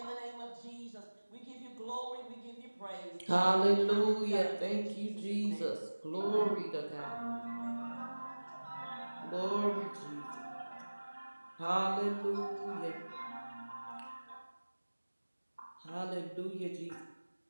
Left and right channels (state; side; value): inverted; both; correlation -1.00